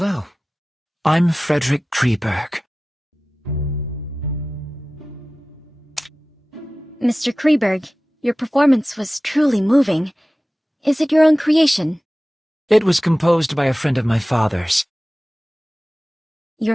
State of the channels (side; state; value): both; normal; correlation 0.96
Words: I'm Frederick Kreeberg. Mr. Kreeberg, your performance was truly moving. Is it your own creation? It was composed by a friend of my father's.